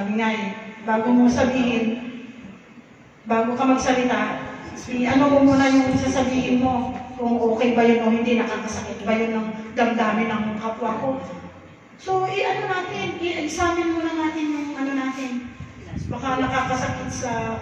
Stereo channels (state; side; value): identical; both; correlation 1.00